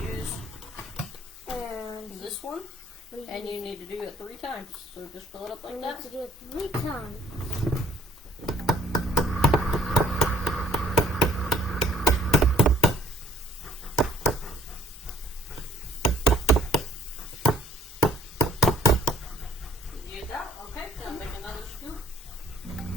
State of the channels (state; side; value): normal; both; correlation 0.60